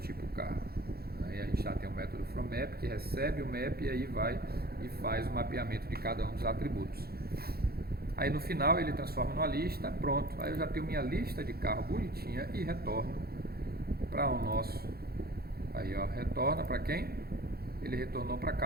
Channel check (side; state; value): left; late; 0.45 ms